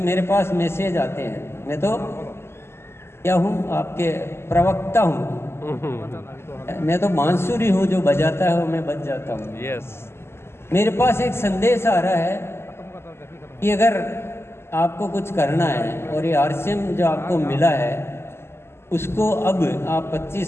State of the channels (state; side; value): late; right; 0.12 ms